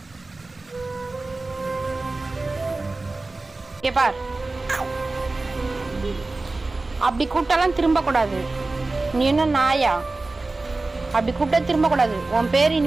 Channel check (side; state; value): left; quieter; 3.3 dB